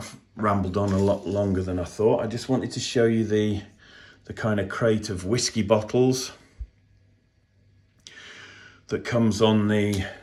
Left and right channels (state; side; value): identical; both; correlation 1.00